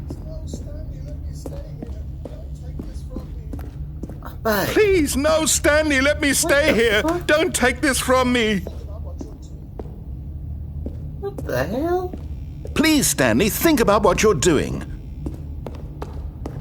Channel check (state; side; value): identical; both; correlation 1.00